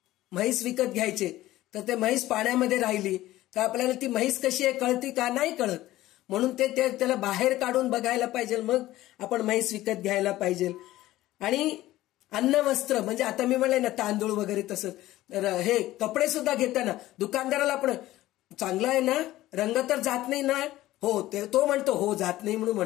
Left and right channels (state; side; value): quieter; right; 15.9 dB